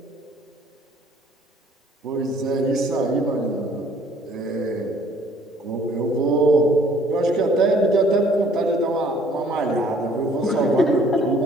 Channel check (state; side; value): normal; both; correlation 0.58